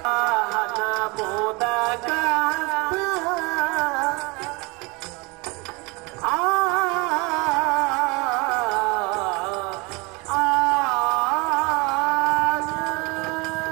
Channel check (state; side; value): quieter; left; 27.3 dB